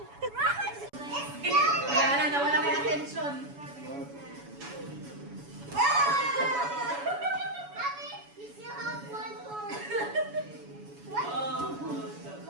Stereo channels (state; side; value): late; left; 7.1 ms